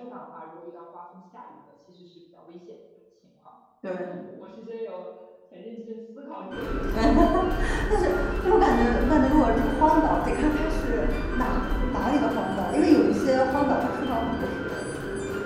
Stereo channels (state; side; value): identical; both; correlation 1.00